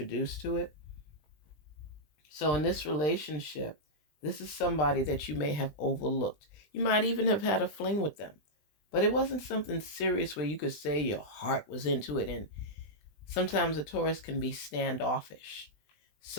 to it. So in this relationship, this is somebody that you may have overlooked. You might even have had a fling with them, but it wasn't something serious where you could say your heart was into it. And sometimes a Taurus can be standoffish.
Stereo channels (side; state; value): right; late; 20 ms